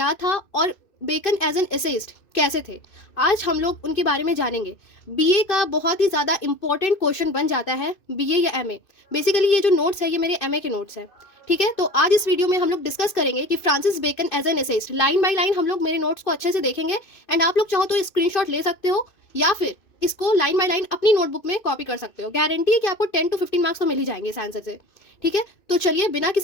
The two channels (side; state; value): right; late; 2.6 ms